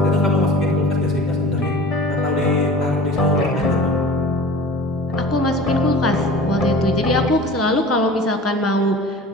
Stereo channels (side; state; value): both; normal; correlation 0.40